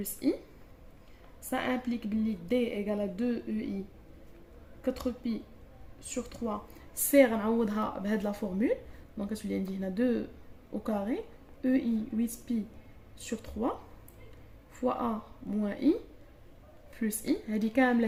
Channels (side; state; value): both; identical; correlation 1.00